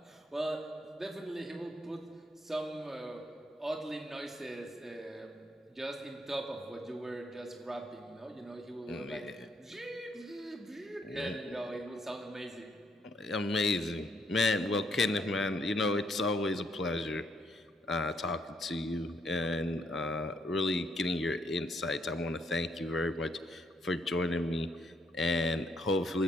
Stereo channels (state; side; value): normal; both; correlation 0.72